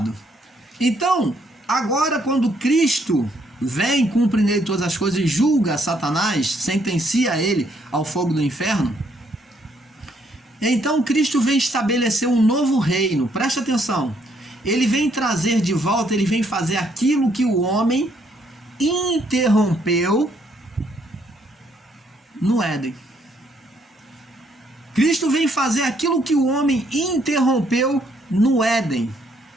Então, agora quando Cristo vem, cumpre nele todas as coisas e julga Satanás, sentencia ele ao fogo do inferno, então Cristo vem estabelecer um novo reino. Presta atenção. Ele vem trazer de volta, ele vem fazer aquilo que o homem interrompeu no Éden. Cristo vem fazer aquilo que o homem interrompeu no Éden,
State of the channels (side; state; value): both; normal; correlation 0.70